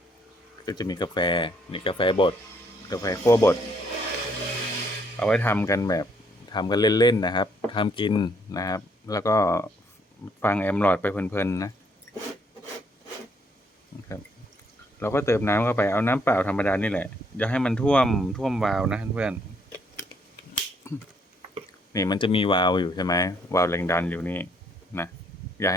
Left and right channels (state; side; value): normal; both; correlation 0.68